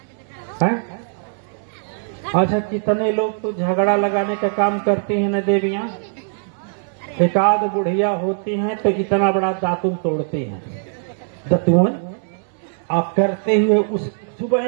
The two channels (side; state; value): left; silent; digital silence